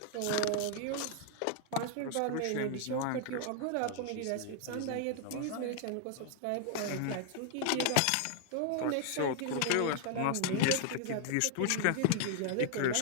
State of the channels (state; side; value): different; both; correlation 0.00